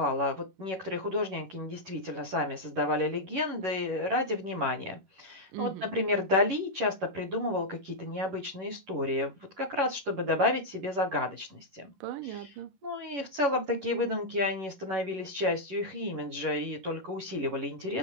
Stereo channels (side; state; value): left; late; 11 ms